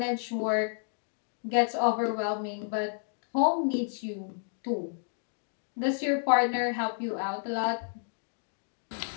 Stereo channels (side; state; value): right; silent; digital silence